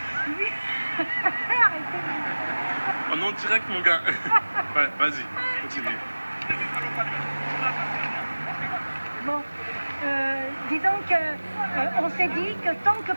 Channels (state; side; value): inverted; both; correlation -1.00